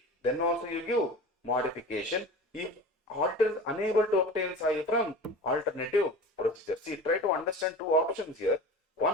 then also you give modification. If auditor is unable to obtain SAI from alternative procedure. See, try to understand two options here.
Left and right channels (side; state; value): both; normal; correlation 0.35